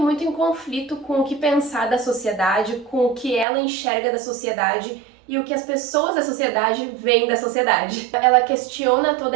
em conflito com o que pensar da sociedade, com o que ela enxerga da sociedade e o que as pessoas da sociedade veem da sociedade. Ela questiona toda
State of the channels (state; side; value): drops out; left; at 3.5 s